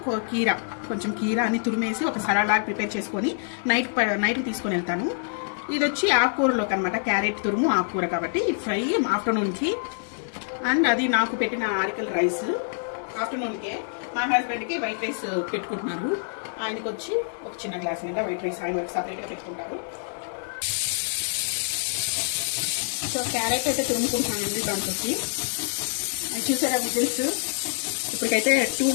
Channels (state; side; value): silent; right; digital silence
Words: కీర, కొంచెం కీర అని తురిమేసి ఒక సలాడ్ లాగా ప్రిపేర్ చేసుకొని నైట్కి తీసుకొని వెళ్తాను. ఇది వచ్చి ఆకుకూరలోకి అనమాట, క్యారెట్ తురుము ఆకుకూర కాబట్టి ఫ్రై ఆఫ్టర్నూన్కి. అండ్ అది నాకు పెట్టిన ఆరికల్ రైస్ ఆఫ్టర్నూన్కే. మా హస్బెండ్కి వైట్ రైస్ పెట్టుకుంటున్నారు. ఆయనకి వచ్చి ఒక చిన్న గ్లాస్ మీద వైట్ రైస్ ఆయన సపరేట్గా పెట్టుకుంటారు. సో క్యారెట్ అయితే తురుముకుంటున్నానండి దాంట్లోకి. చూసారా విజిల్స్? ఇప్పటికైతే 2